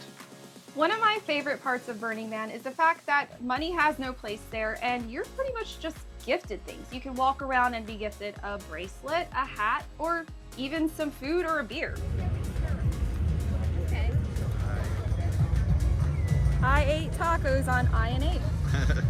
One of my favorite parts of Burning Man is the fact that money has no place there and you're pretty much just gifted things. You can walk around and be gifted a bracelet, a hat, or even some food or a beer. Okay. I ate tacos on I&H.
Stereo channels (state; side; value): identical; both; correlation 1.00